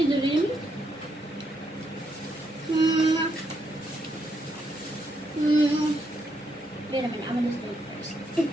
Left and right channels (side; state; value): both; normal; correlation 0.78